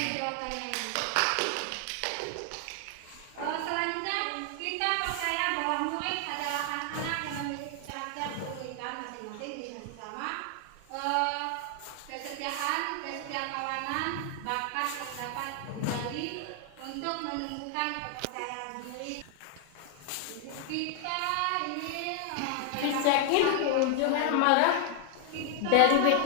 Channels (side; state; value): both; different; correlation 0.00